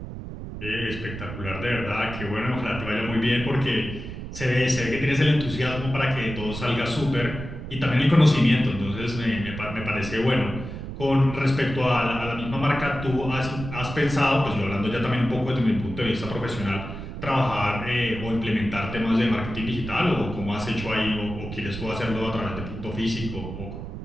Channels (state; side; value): noise; right; rumble, 9 dB below the sound